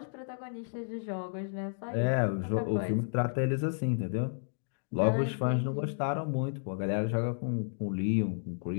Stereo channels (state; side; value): silent; right; digital silence